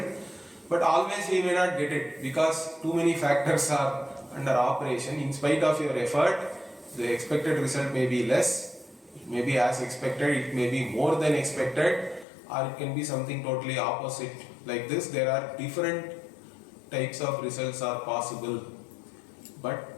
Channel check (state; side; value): drops out; right; at 12.2 s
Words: But always we may not get it because too many factors are under operation. In spite of your effort, the expected result may be less, it may be as expected, it may be more than expected, or it can be something totally opposite. Like this, there are different types of results are possible.